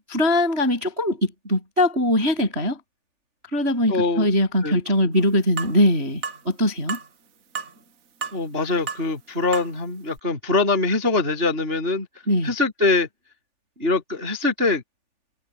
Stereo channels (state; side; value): late; left; 3.4 ms